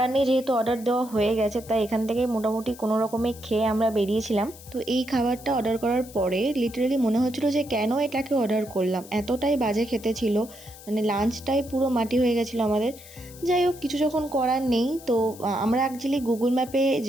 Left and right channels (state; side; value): noise; left; hiss, 19 dB below the sound